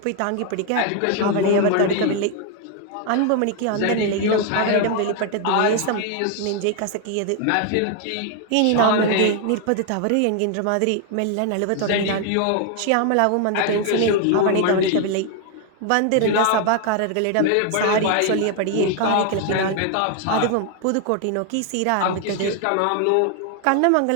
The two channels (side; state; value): both; different; correlation 0.00